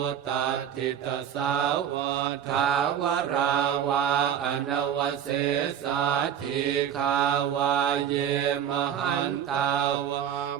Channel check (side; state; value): left; quieter; 9.0 dB